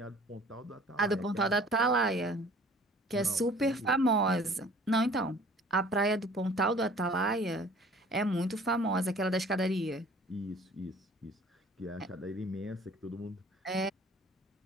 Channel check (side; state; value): both; normal; correlation 0.51